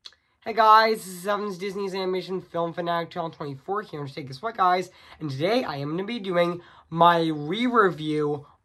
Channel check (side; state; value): both; identical; correlation 1.00